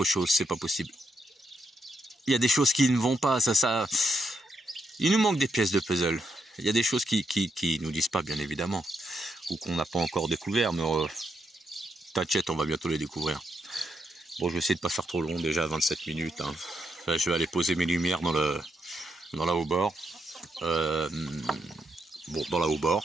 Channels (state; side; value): normal; both; correlation 0.80